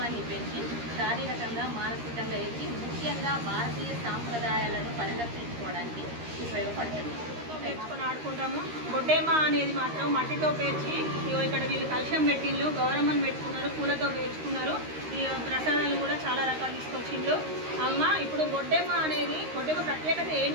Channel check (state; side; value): late; left; 13 ms